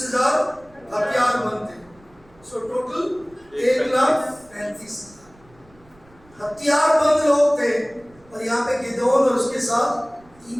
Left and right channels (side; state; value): right; noise; rumble, 28 dB below the sound